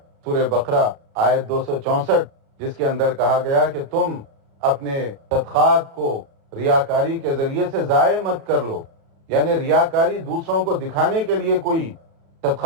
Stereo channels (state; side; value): late; left; 36 ms